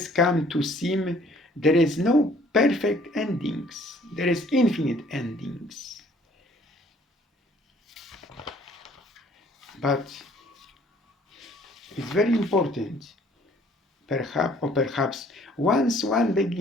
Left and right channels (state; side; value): normal; both; correlation 0.58